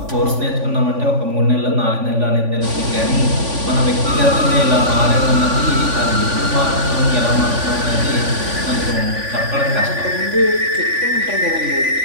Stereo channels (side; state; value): left; late; 3.5 ms